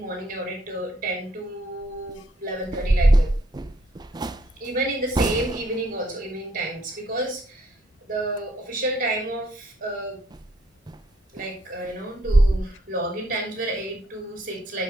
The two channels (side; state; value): both; normal; correlation 0.67